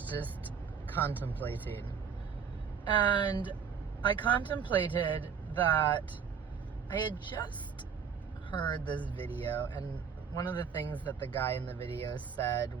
just contemplating, and I contemplated that I had just heard this video, and one of the things that the guy in the video said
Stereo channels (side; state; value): left; quieter; 6.7 dB